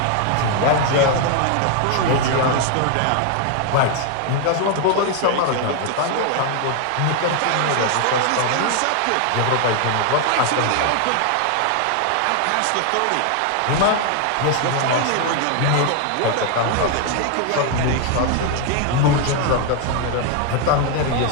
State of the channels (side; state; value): both; different; correlation 0.01